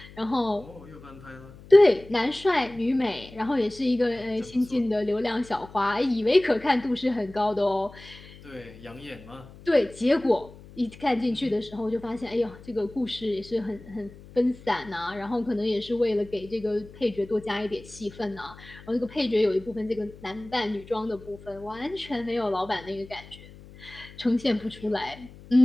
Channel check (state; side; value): noise; left; hum, 19 dB below the sound